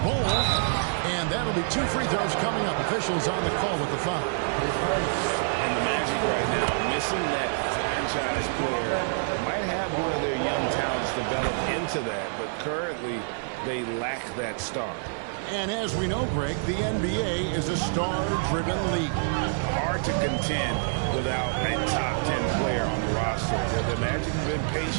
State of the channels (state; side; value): silent; left; 60 dB below the other